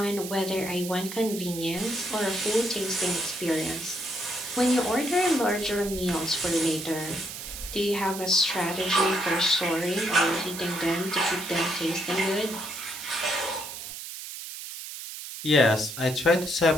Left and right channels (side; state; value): right; noise; hiss, 9 dB below the sound